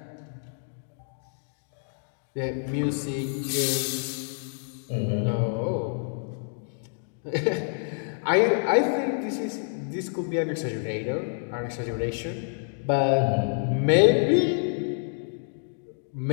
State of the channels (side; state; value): right; silent; 57 dB below the other